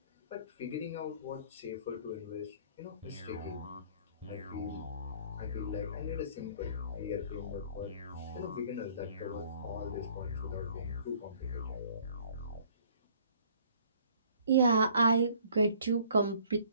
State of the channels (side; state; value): both; inverted; correlation -0.56